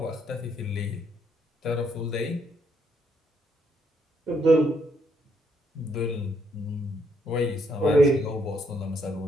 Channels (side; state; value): both; normal; correlation 0.72